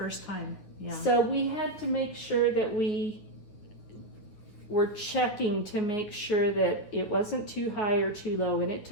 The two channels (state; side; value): late; right; 9.7 ms